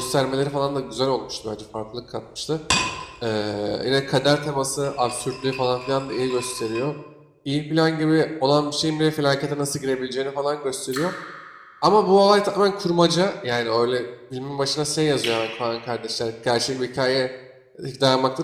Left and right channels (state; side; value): identical; both; correlation 1.00